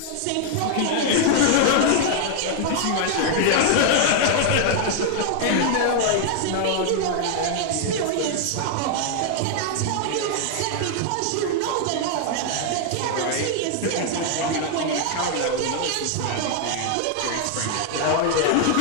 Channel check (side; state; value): both; different; correlation 0.00